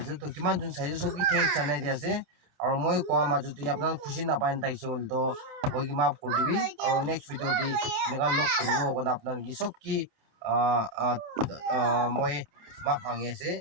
তো কিমান জন চাইছে চব কি থেংক জানাই দিয়া আছে আৰু মই কোৱা মাজতে আপোনাৰ খুচি নাপায় তাইছে হ'ল তো মই কি মাফ কৰি দিবি আৰু নেক্সট ভিডিঅ' দি এনেকুৱা লগ কৰিব কাৰণে আপোনাৰ কি চব কি মই মাফ মাগি আছে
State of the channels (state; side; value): late; left; 29 ms